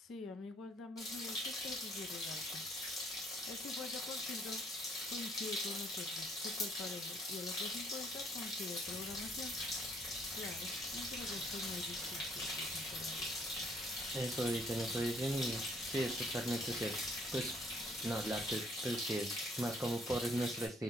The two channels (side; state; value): both; normal; correlation 0.65